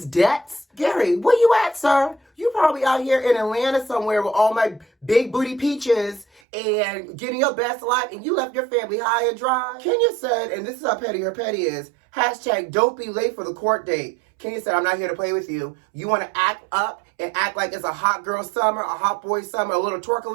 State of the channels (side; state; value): left; drops out; at 6.4 s